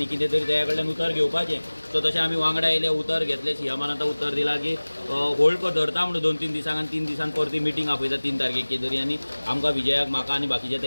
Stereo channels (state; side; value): inverted; both; correlation -1.00